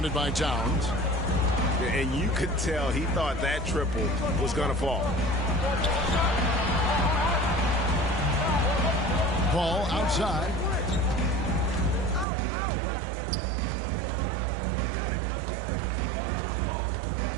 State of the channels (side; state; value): left; drops out; at 12.2 s